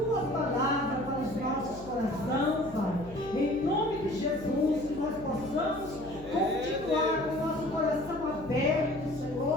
palavra para os nossos corações, Pai. Em nome de Jesus, que nós possamos continuar com o nosso coração aberto,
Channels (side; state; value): left; noise; hum, 17 dB below the sound